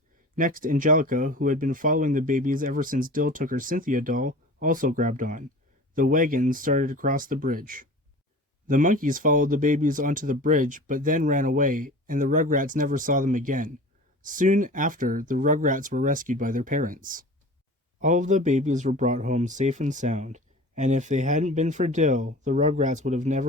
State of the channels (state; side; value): normal; both; correlation 0.38